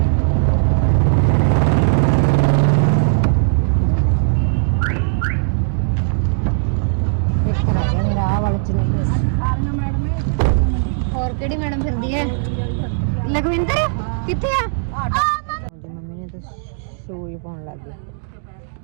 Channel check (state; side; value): silent; left; digital silence